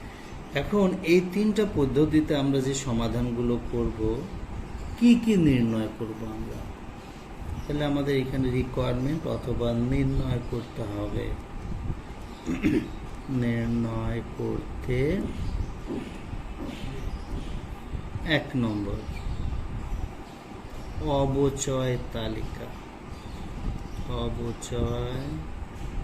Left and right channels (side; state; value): both; identical; correlation 1.00